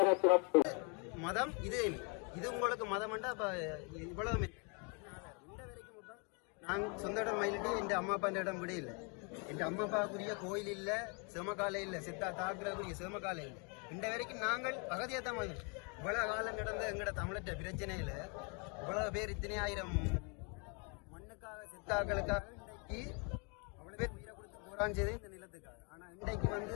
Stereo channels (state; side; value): quieter; right; 34.5 dB